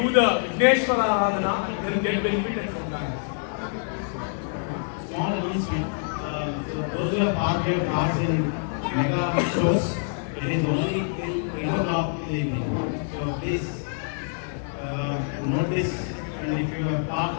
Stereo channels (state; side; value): silent; right; 61 dB below the other